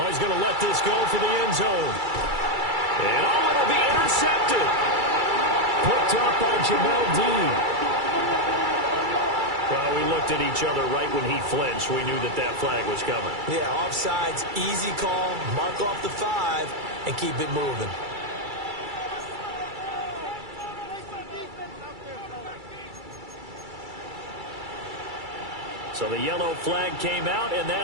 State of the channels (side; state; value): left; late; 2.3 ms